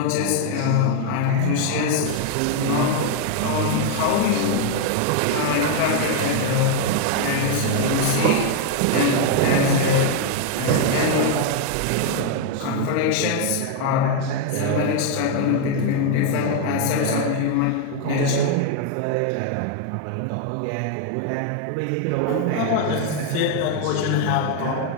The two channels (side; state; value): both; different; correlation 0.00